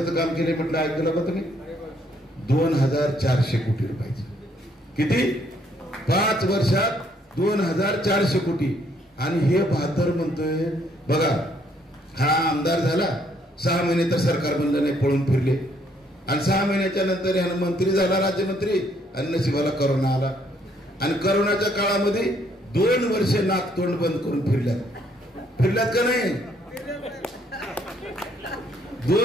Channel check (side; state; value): both; normal; correlation 0.68